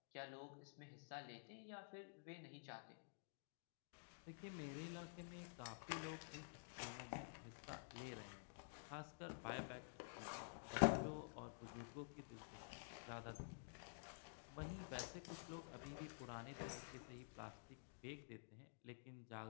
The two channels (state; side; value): silent; right; digital silence